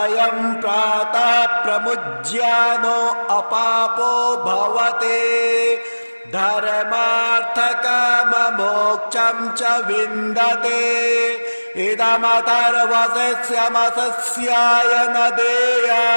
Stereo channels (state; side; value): inverted; both; correlation -1.00